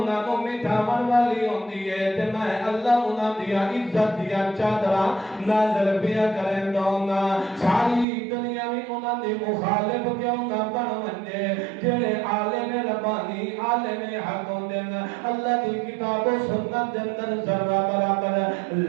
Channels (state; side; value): drops out; left; at 8.1 s